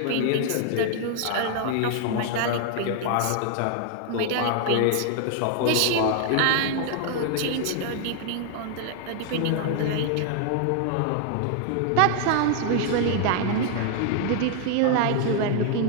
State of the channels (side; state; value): both; different; correlation 0.00